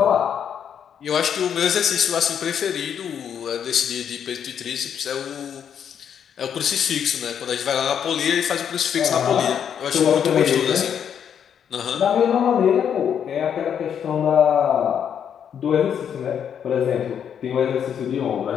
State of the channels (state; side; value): quieter; right; 8.4 dB